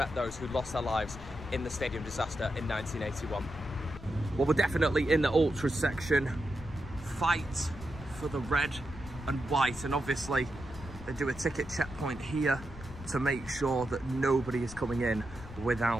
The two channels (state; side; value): noise; left; rumble, 14 dB below the sound